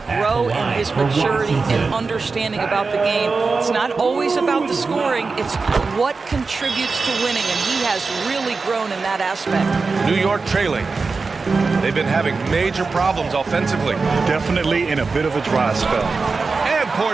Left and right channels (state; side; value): quieter; left; 4.3 dB